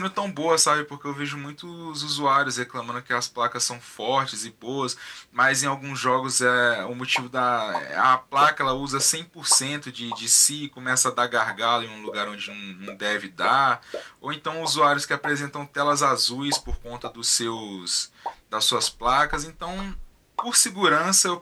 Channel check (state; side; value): identical; both; correlation 1.00